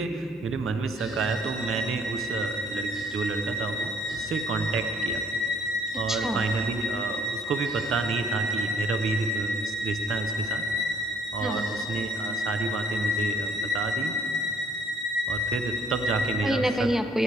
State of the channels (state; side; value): normal; both; correlation 0.62